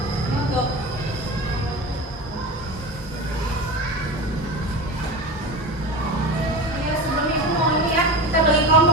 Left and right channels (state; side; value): normal; both; correlation 0.28